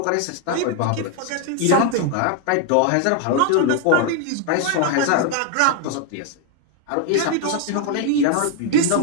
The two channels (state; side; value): different; both; correlation 0.01